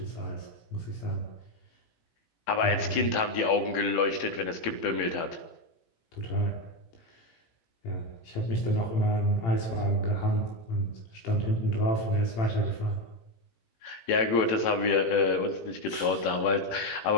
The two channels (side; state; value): right; late; 18 ms